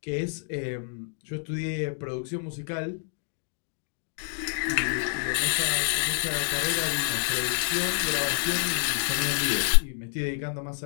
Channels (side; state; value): right; silent; digital silence